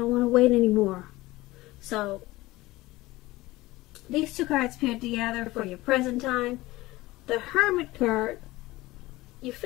want to wait anymore. So these two cards paired together for your present time. The Hermit card, you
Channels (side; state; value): right; quieter; 19.1 dB